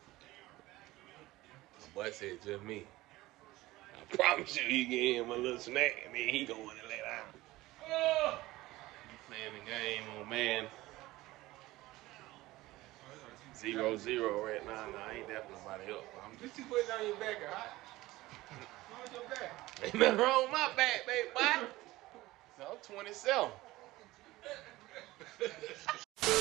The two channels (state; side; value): quieter; left; 18.3 dB